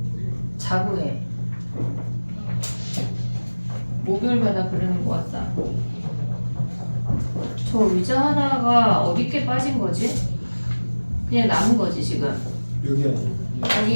해. 목요일마다 그러는 것 같다. 저 의자 하나가 어디께 빠진 거지? 그냥 남은 거지 지금. 여기 아니에요.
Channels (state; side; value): inverted; both; correlation -1.00